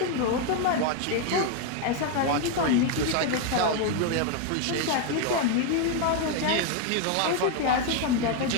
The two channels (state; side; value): different; both; correlation 0.01